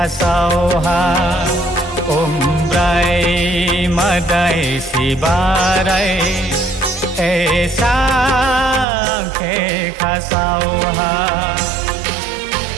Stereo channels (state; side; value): drops out; left; at 8.8 s